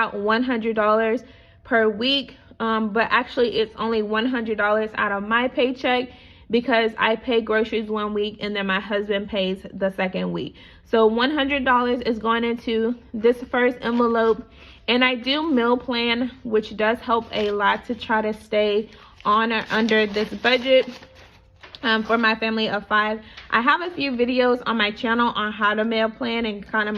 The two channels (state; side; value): identical; both; correlation 1.00